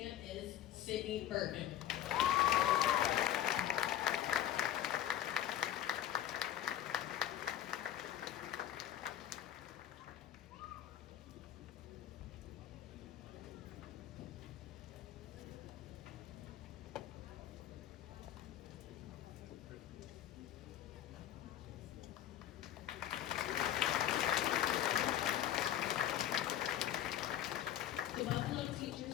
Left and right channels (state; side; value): quieter; right; 12.0 dB